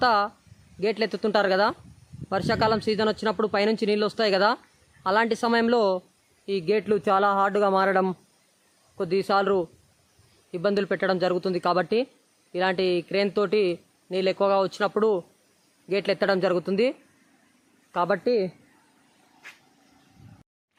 గేట్లు ఎత్తుతుంటారు కదా, వర్షాకాలం సీజన్ వచ్చినప్పుడు పైనుంచి నీళ్ళు వస్తాయి కదా, అలాంటి సమయంలో ఈ గేట్లు చాలా హార్డ్గా మారడం, కొద్దిసార్లు ఇబ్బందులు పెట్టడం జరుగుతుంది. కాబట్టి ఇలాంటి క్రేన్ తోటి నీళ్ళు ఎక్కువగా వచ్చినప్పుడు గేట్లు ఎత్తడం జరుగుతుంది. కాబట్టి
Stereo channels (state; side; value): identical; both; correlation 1.00